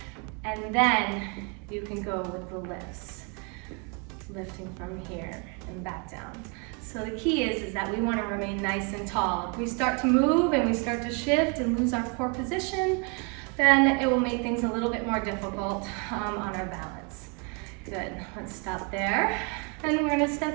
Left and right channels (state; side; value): quieter; left; 33.7 dB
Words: and then you can go with the lifts. Lifting from here and back down. So the key is that we wanna remain nice and tall. If we start to move and we start to shift and lose our core position, then it will make things a little bit more difficult on our balance. Good, let's stop there. And we're gonna